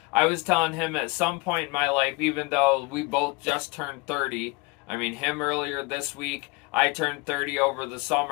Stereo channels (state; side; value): quieter; right; 26.4 dB